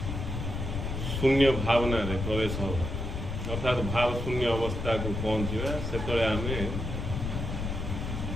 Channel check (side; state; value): left; noise; rumble, 4 dB below the sound